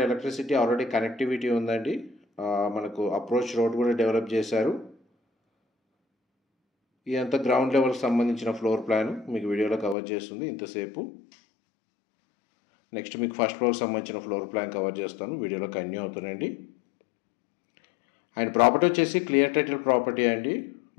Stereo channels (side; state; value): right; drops out; at 10.0 s